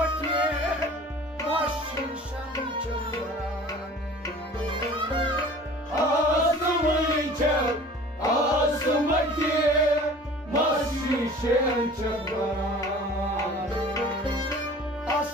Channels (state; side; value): normal; both; correlation 0.44